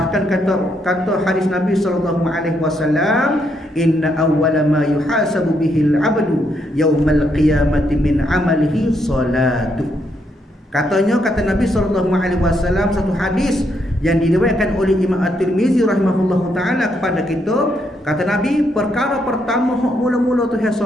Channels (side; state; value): both; normal; correlation 0.76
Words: kata hadis Nabi SAW, inna awwala ma yuhasabu bihil abdu yaumal qiyamati min amalihi salatu. Kata Nabi SAW, satu hadis yang diriwayatkan oleh Imam At-Tirmizi rahimahullahu ta'ala kepada kita, kata Nabi, perkara pertama hak mula-mula Tuhan